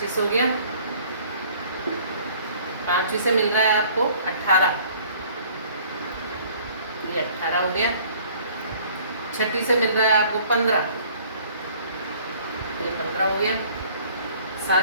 हो गया, पांचवी से मिल रहा है आपको 18, ये 18 हो गया, छठी से मिल रहा है आपको 15, ये 15 हो गया,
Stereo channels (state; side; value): inverted; both; correlation -0.54